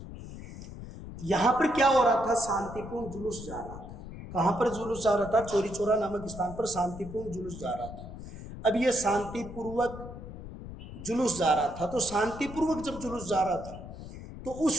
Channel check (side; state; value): left; noise; rumble, 12 dB below the sound